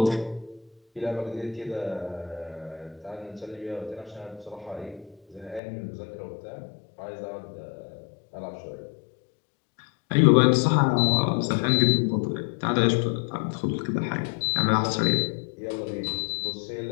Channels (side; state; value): right; drops out; at 5.6 s